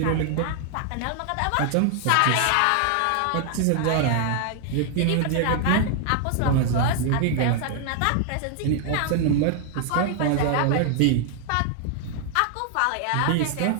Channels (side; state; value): both; different; correlation 0.00